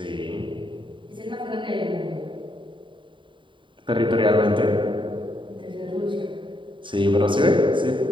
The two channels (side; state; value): left; late; 0.24 ms